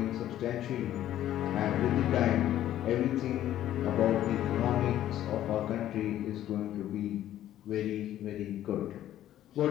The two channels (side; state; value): right; quieter; 12.4 dB